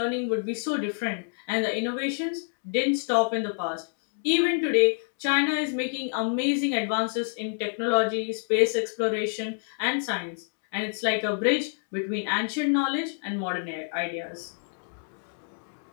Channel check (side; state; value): right; silent; digital silence